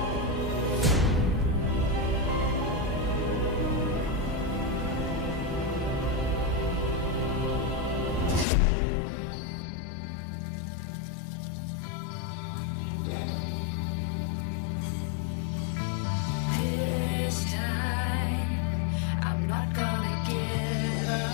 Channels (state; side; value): drops out; right; at 8.5 s